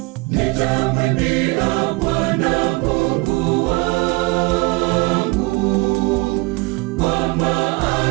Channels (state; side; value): quieter; left; 25.1 dB